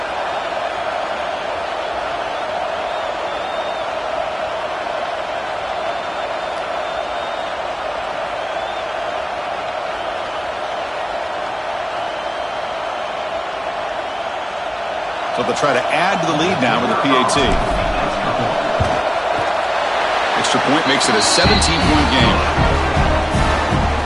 So they'll try to add to the lead now with a PAT. Extra point makes it a 17-point game.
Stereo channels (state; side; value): identical; both; correlation 1.00